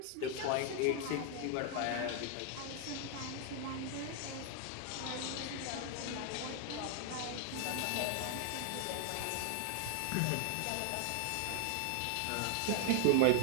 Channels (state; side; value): different; both; correlation 0.00